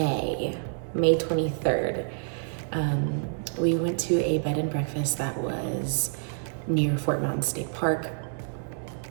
23rd. We went to a bed and breakfast that was near Fort Mountain State Park.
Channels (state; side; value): silent; left; digital silence